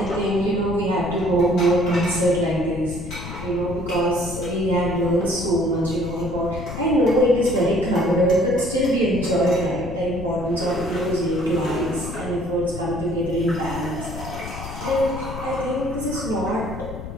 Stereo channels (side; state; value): left; noise; rumble, 10 dB below the sound